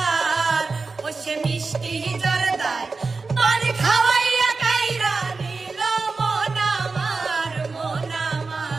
ও সে মিষ্টি জর্দায় পান খাওয়াইয়া কাইরা নিল মন আমার, মন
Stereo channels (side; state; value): left; quieter; 4.1 dB